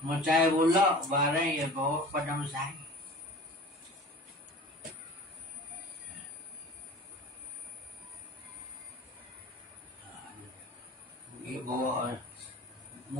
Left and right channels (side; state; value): both; normal; correlation 0.40